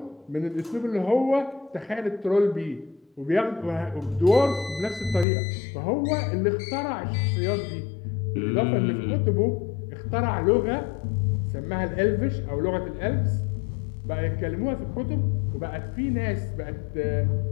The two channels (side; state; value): right; drops out; at 5.2 s